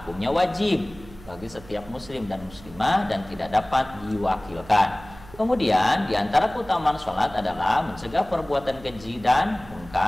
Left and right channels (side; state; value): right; noise; hum, 19 dB below the sound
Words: wajib bagi setiap muslim dan muslimah dan tidak dapat diwakilkan. Kemudian diantara keutamaan sholat adalah mencegah perbuatan keji dan